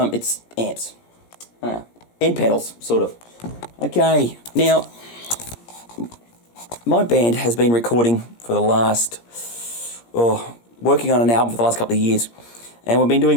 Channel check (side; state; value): right; late; 17 ms